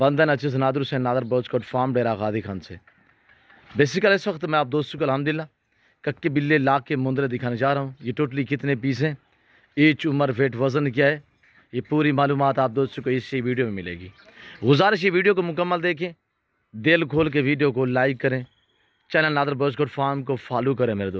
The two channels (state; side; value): identical; both; correlation 1.00